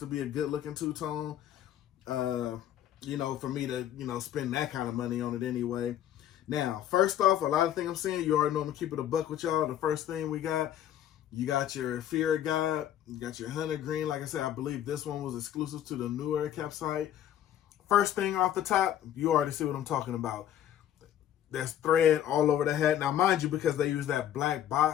be a good-looking 2-tone. For me to, spend that kind of money on it anyway. Now, first off, a lot of things I'm saying, you already know I'm going to keep it a buck with y'all. The first thing you got your Fear of God, you got your Hunter Green. Like I said, I believe this one was exclusive to the New Era Cap site. First thing off the top, you already see what I'm talking about. There's thread all over the hat. Now, mind you, because they use that black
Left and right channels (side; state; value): right; quieter; 11.0 dB